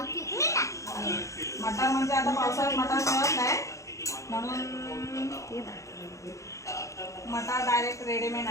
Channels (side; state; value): right; late; 0.15 ms